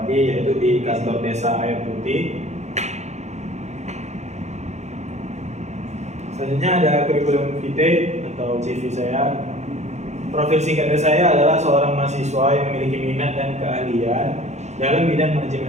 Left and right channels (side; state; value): left; late; 0.33 ms